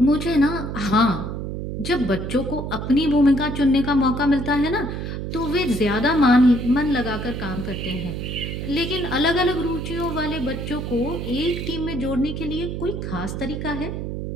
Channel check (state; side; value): noise; right; hum, 5 dB below the sound